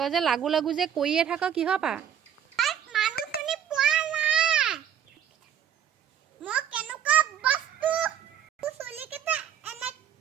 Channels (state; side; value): quieter; left; 9.3 dB